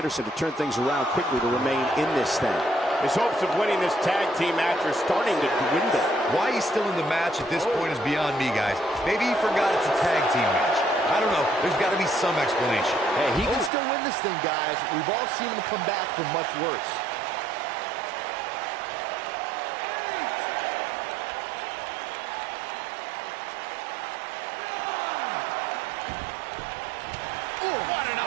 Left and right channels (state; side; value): drops out; left; at 13.7 s